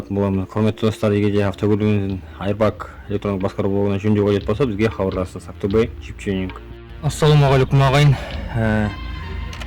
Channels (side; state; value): both; identical; correlation 1.00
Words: боламыз. Құрметті достар, егер де автокөлігінен Airbag электрондық басқару блогынан жөндеу қажет болса, бізге хабарласыңыз. Ақтөбе Чипченинг. Ассалаумағалейкум ағайын.